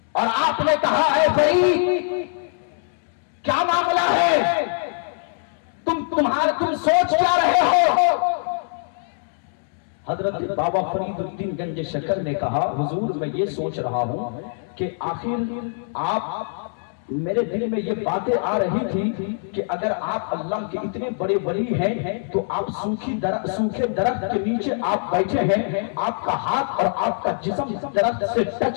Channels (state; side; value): silent; right; 63 dB below the other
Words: اور آپ نے کہا اے فرید کیا معاملہ ہے، تم سوچ کیا رہے ہو؟ حضرت بابا فرید الدین گنج شکر نے کہا حضور میں یہ سوچ رہا ہوں کہ آخر آپ میرے دل میں یہ باتیں آ رہی تھی کہ اگر آپ اللہ کے اتنے بڑے ولی ہیں تو آپ سوکھے درخت کے نیچے آپ بیٹھے ہیں، آپ کا ہاتھ اور آپ کا جسم درخت سے